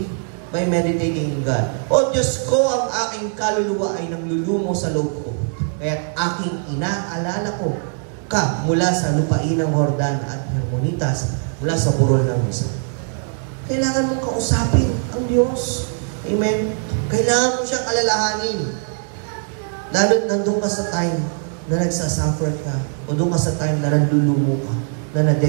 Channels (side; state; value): left; silent; 60 dB below the other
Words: by meditating in God. O Diyos ko, ang aking kaluluwa ay nanglulumo sa loob ko. Kaya aking inaalala ko ka mula sa lupain ng Jordan at Hermonitas, mula sa burol ng Misa. Kailangan mong kausapin ang Diyos. Amen? Kailangan mo siyang alalahanin. Lalo nandun ka sa time na nagsasuffer ka, o doon ka sa time na nandulumo ka, na